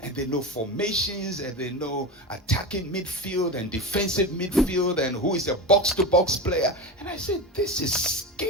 and they know formations, and they know attacking midfield and defensive midfield, and who is a box-to-box player. And I said, this is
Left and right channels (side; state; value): both; normal; correlation 0.23